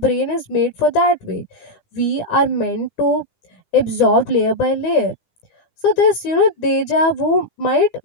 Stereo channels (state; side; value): late; right; 9.9 ms